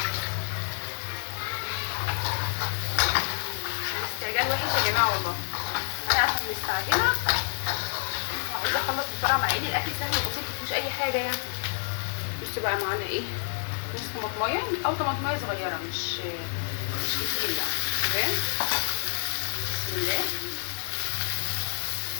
الاستعجال وحش يا جماعه والله. انا عشان مستعجله وعايزه اخلص بسرعه، مع ان الاكل سهل وبسيط مفيهوش اي حاجه يعني. بصوا بقى معانا ايه نص طماطمايه او طماطمايه صغيره، مش كتير يعني. تمام. بسم الله.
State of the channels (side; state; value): right; silent; digital silence